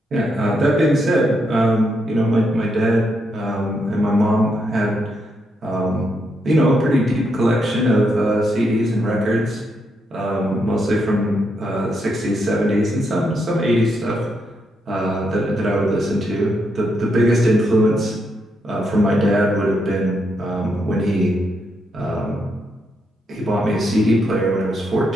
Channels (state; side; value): normal; both; correlation 0.79